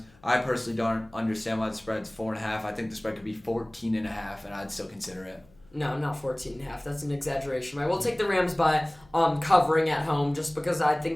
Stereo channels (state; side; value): noise; left; hum, 29 dB below the sound